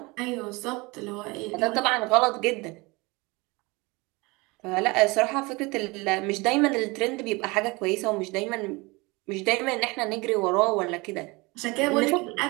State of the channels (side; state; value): left; quieter; 25.0 dB